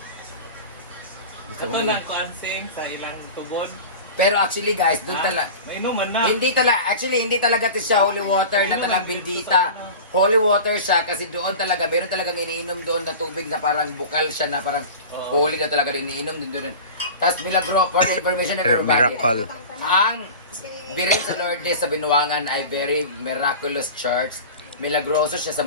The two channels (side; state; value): both; inverted; correlation -0.34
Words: Ito lang ko ansing sa ilang tugon. Pero actually guys, doon talaga, May inuman na. hindi talaga ito siya holy water na talang bendita. Holy water siya kasi doon talaga, meron talagang iniinom doon na tubig na parang bukal siya na parang holy na talaga iniinom din doon. Tapos milagro, for the information of everybody, Miracle. ang birin sa Lourdes sa Binuangan ay very miraculous church. Milagroso siya sa